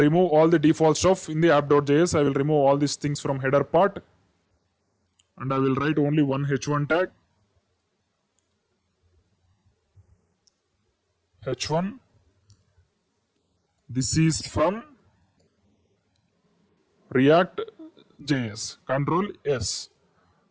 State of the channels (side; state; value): both; identical; correlation 1.00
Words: all the default stuff in the app.js. I will remove all these things from header part and I will write only one h1 tag. h1. This is from React.js. Control S.